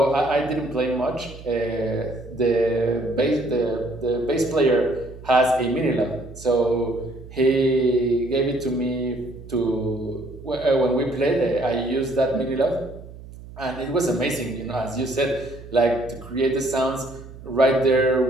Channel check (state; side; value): noise; right; hum, 16 dB below the sound